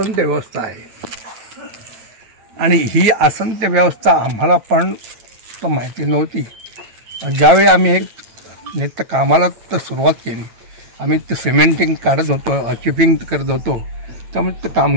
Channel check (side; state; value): left; late; 9.0 ms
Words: व्यवस्था आहे. आणि ही आसनते व्यवस्था आम्हाला पण तर माहिती नव्हती. ज्यावेळी आम्ही हे नित्य कामाला तर सुरुवात केली, आम्ही ते सिमेंटिंग काढत होतो, चिपिंग करत होतो, त्यामुळे ते